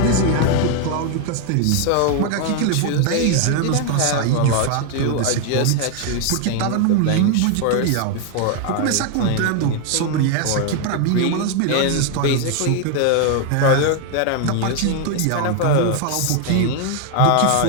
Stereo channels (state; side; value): different; both; correlation 0.00